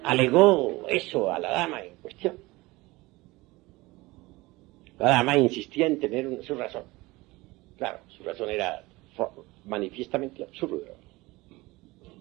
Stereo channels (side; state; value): left; quieter; 21.4 dB